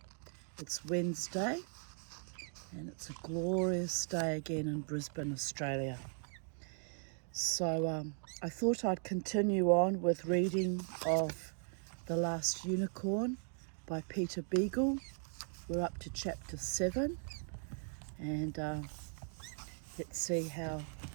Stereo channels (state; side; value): silent; left; 52 dB below the other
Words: It's Wednesday and it's a glorious day again in Brisbane, Australia. So I thought I'd continue on with reading of The Last Unicorn by Peter Beagle. We're up to chapter 7 and let's see how